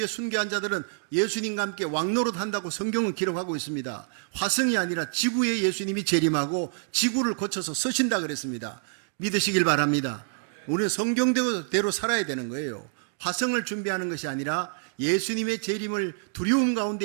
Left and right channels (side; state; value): left; silent; 60 dB below the other